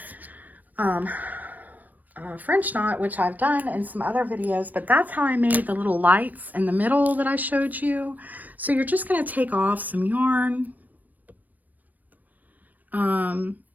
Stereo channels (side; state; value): left; late; 0.083 ms